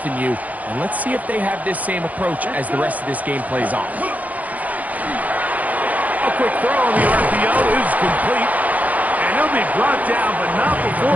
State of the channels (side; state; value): left; late; 0.076 ms